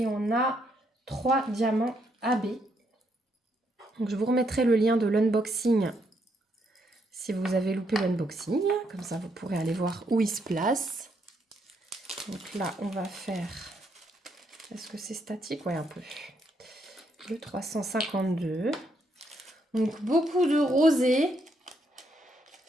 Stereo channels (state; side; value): normal; both; correlation 0.75